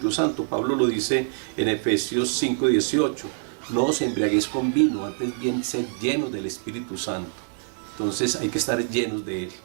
Santo. Pablo lo dice en Efesios 5:18: no os embriaguéis con vino, antes bien ser llenos del Espíritu Santo. Entonces hay que estar llenos de él.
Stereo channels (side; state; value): left; silent; digital silence